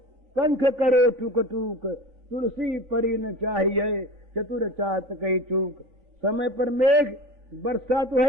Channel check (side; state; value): left; late; 3.9 ms